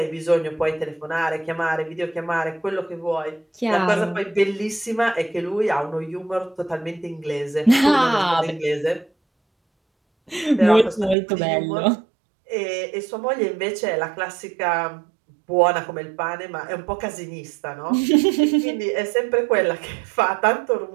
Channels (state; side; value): drops out; left; at 11.2 s